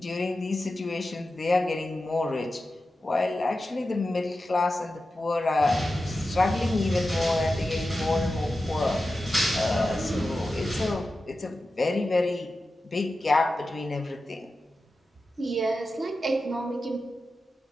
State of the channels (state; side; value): normal; both; correlation 0.92